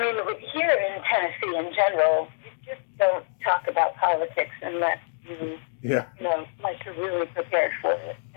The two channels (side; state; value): right; silent; digital silence